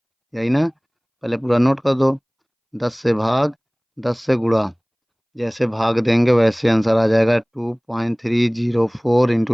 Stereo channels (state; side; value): identical; both; correlation 1.00